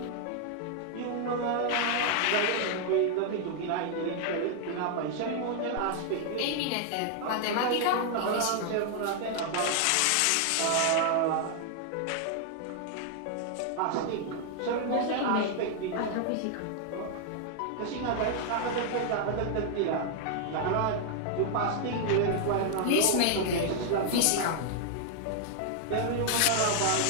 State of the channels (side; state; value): both; different; correlation 0.00